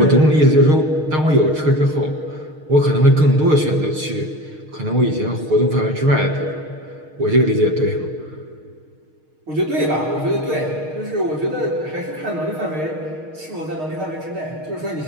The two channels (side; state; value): left; late; 6.5 ms